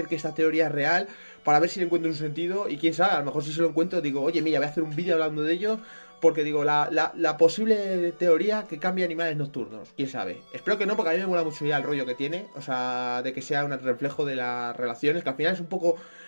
que esta teoría es real para ver si le encuentro un sentido. Y quién sabe, a lo mejor si se lo encuentro digo, oye, mira, voy a hacer un vídeo hablando de ello, porque digo, la posible teoría que cambia Animales Nocturnos, quién sabe. Espero que no, porque a mí me mola mucho ya el rollo que tiene, o sea, de que sea un reflejo de las relaciones, que al final es un poco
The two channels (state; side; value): inverted; both; correlation -1.00